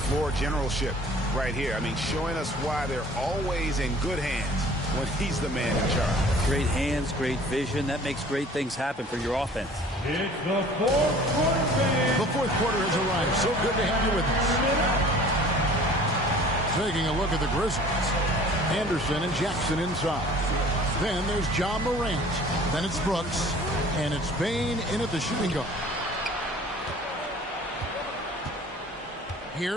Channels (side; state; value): both; normal; correlation 0.48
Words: generalship? right here. I mean, showing us why they're always in good hands when he's the man in charge. Great hands, great vision. That makes great things happen for your offense. It's the fourth quarter. The fourth quarter has arrived. So good to have you with us. Taking a look at the Grizzlies. Anderson and Jackson inside. Then there's John Morant. Then it's Brooks. And it's Bain in at the shooting guard.